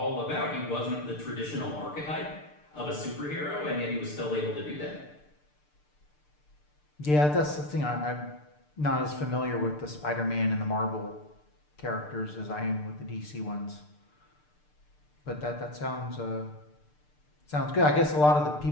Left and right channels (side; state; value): right; late; 6.7 ms